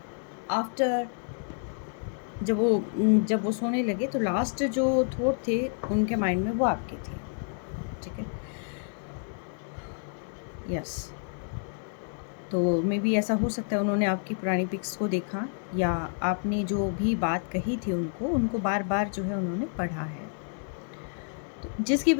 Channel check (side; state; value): right; silent; 58 dB below the other